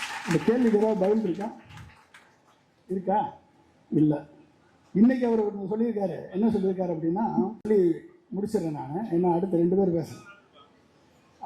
இந்த கேள்விக்கு ஏதாவது பதில் இருக்கா? இல்லை. இன்னைக்கு அவர் சொல்லியிருக்காரு. என்ன சொல்லியிருக்காரு அப்படின்னா, சொல்லி முடிச்சிடறேன் நான், என்ன அடுத்த 2 பேர் பேசுகிறேன்.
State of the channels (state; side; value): identical; both; correlation 1.00